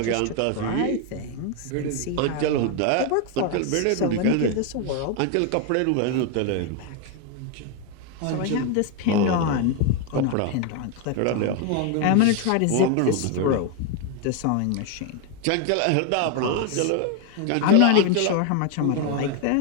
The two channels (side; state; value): both; different; correlation 0.01